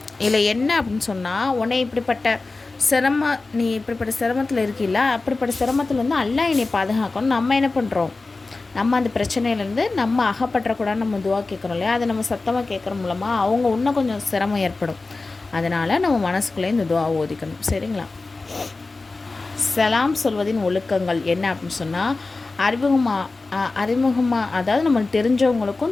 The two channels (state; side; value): quieter; right; 3.6 dB